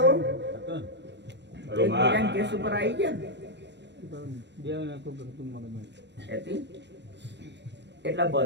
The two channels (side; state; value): left; late; 0.51 ms